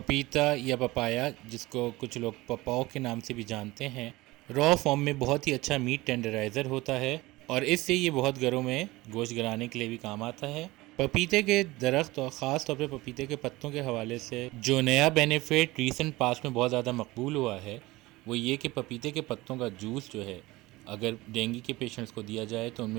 या पपाया, जिसको कुछ लोग पपाओ के नाम से भी जानते हैं, रॉ फॉर्म में बहुत ही अच्छा मीट टेंडराइज़र होता है, और इससे ये बहुत घरों में गोश्त गलाने के लिए भी काम आता है। पपीते के दरख्त और ख़ास तौर पे पपीते के पत्तों के हवाले से जो नया बेनिफिट रीसेंट पास्ट में बहुत ज़्यादा मकबूल हुआ है, वो ये कि पपीते के पत्तों का जूस जो है, अगर डेंगू के पेशेंट्स को दिया जाए तो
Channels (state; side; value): quieter; left; 20.1 dB